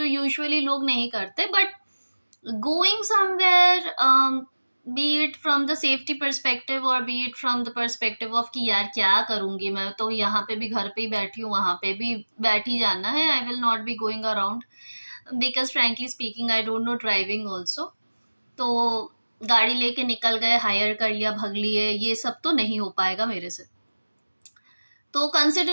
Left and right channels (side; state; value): both; inverted; correlation -1.00